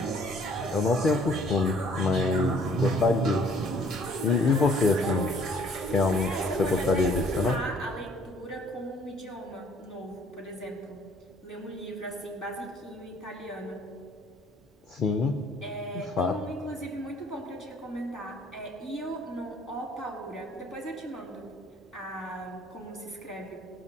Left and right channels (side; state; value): both; normal; correlation 0.59